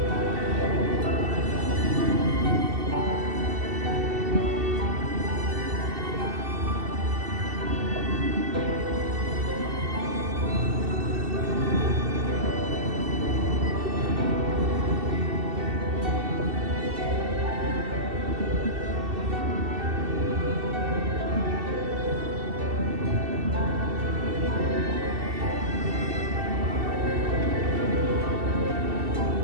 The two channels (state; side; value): late; left; 2.7 ms